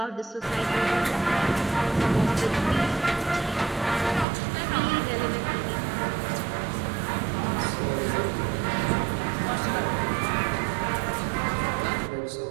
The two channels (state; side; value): drops out; left; at 4.2 s